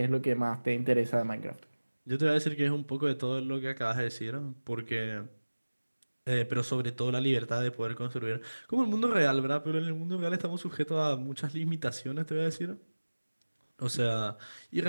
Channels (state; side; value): inverted; both; correlation -1.00